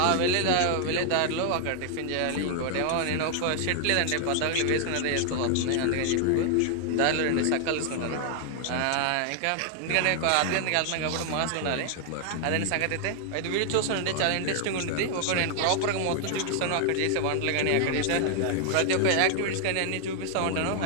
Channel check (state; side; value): different; both; correlation 0.00